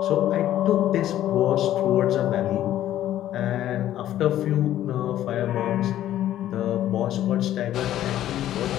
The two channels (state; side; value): quieter; right; 12.6 dB